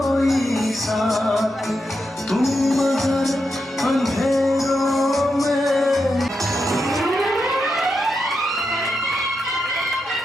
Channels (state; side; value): normal; both; correlation 0.85